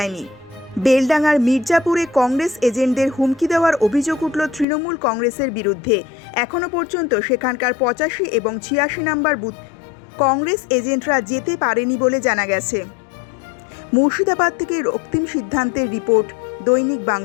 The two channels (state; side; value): drops out; right; at 4.7 s